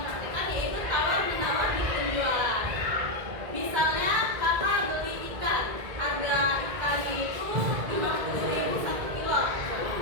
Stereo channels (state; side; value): late; left; 2.0 ms